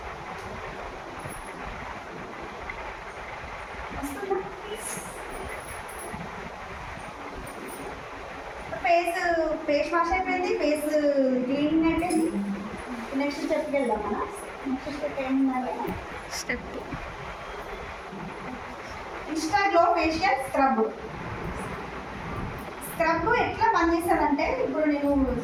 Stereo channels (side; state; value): both; identical; correlation 1.00